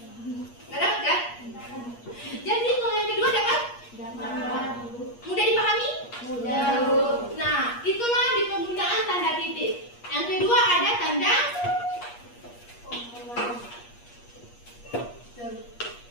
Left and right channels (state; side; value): late; right; 8.4 ms